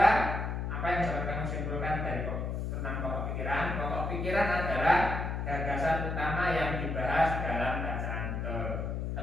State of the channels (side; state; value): left; noise; hum, 2 dB below the sound